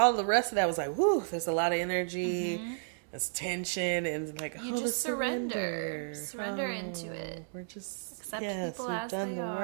the rest of that was like, whoo, there's a lot of energy, there's tension, and like, you just surrender into it. We're just, accept people we've as done they the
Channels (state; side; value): silent; left; digital silence